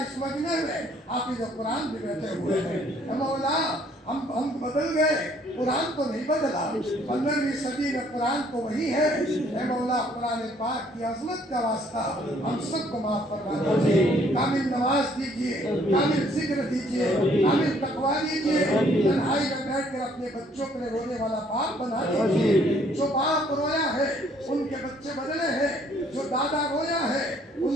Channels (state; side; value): normal; both; correlation 0.63